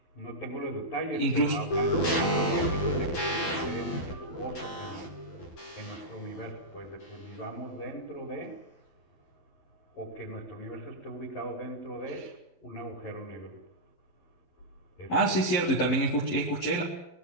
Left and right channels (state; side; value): late; right; 12 ms